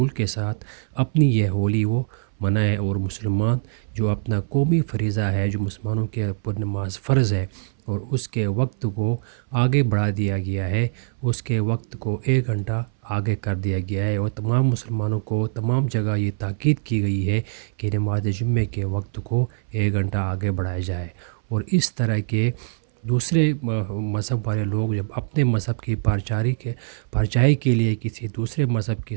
کے ساتھ اپنی یہ ہولی وہ منائیں، اور مسلمان جو اپنا قومی فریضہ ہے، جو مسلمانوں کے اوپر نماز فرض ہے اور اس کے وقت کو آگے بڑھا دیا گیا ہے، اس کے وقت کو 1 گھنٹہ آگے کر دیا گیا ہے، اور تمام مسلمانوں کو تمام جگہ یہ تاکید کی گئی ہے کہ نماز جمعے کے وقت کو 1 گھنٹہ آگے بڑھایا جائے۔ اور اس طرح کے دوسرے مذہب والے لوگ جب اپنے مذہب کی پرچائی کے لیے کسی دوسرے مذہب کے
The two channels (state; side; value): silent; left; 61 dB below the other